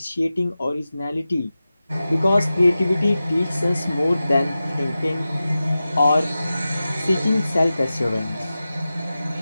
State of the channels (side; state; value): both; inverted; correlation -0.94